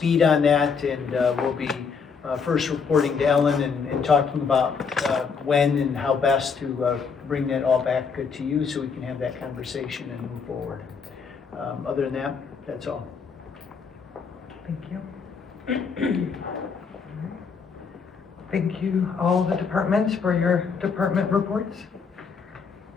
on that, and we'll be first reporting to Ellen and talking about when and how best to bring that all back to you so we can have that conversation and move forward. Other than that, that's all. Thank you. Thank you, all the departments, for your department reports.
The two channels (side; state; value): right; quieter; 5.7 dB